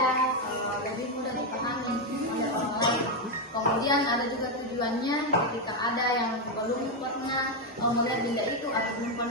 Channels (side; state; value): both; normal; correlation 0.05